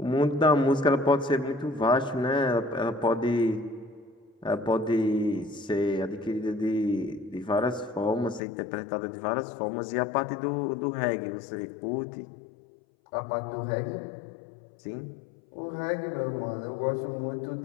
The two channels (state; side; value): drops out; right; at 8.4 s